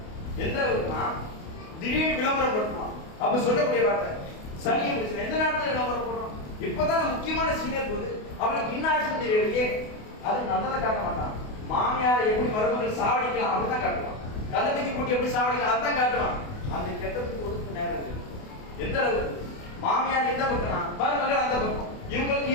எந்த அளவுக்குனா திடீர்னு விளம்பரம் பண்ணுவான். அப்ப சொல்லக்கூடிய வார்த்தை சனியை பிரச்சனை எந்த நேரத்துல விளம்பரம் போடுறோம்? இப்பதான் முக்கியமான சீனியர் போது அவனுக்கு இன்னாக்ஷன் தெரியலையே, அது நல்லதை காட்ட மாட்டான். மாமியார் எப்படி மருமகள் சாவடிக்கலாம் அப்படிதான் காட்டுவான். கள்ளத்துக்கு கூட்டி எப்படி சாவடிக்கலாம் அதுதான் காட்டுவான். அந்த கெட்டத்துக்கு ஒதுக்கு நேரம் இருக்கு. எந்த அளவுக்கு மாமியார் எந்த பக்கம்னா மருமகள் அந்த பக்கம், இவங்களுக்கு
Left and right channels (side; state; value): right; late; 28 ms